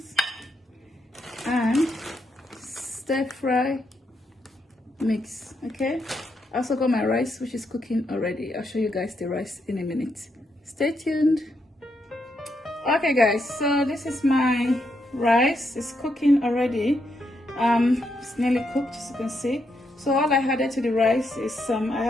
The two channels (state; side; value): normal; both; correlation 0.80